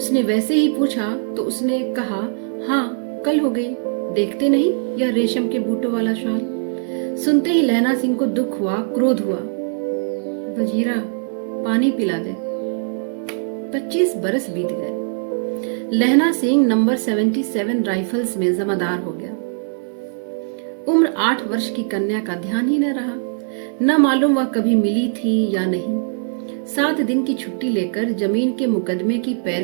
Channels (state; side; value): silent; left; digital silence